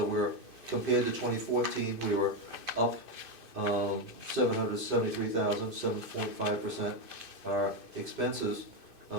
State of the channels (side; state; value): right; late; 2.6 ms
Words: we're, compared to 2014, we were up 773,000, 7.5%. Our expenses,